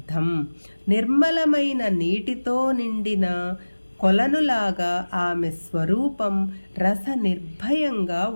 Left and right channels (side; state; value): both; inverted; correlation -1.00